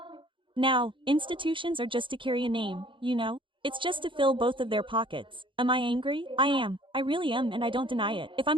Now, institutions are just to carry a name, you know? It's just to fill both of their pockets. Am I angry? I am. I really am and I don't deny it. If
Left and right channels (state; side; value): late; left; 0.24 ms